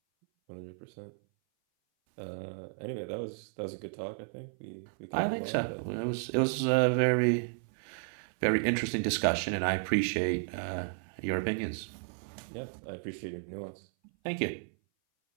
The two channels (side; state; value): left; silent; 56 dB below the other